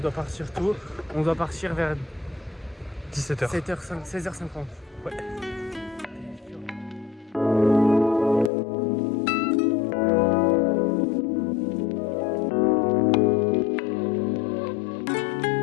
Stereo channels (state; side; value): drops out; right; at 8.5 s